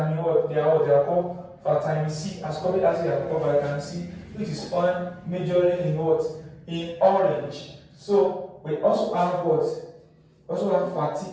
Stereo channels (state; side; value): identical; both; correlation 1.00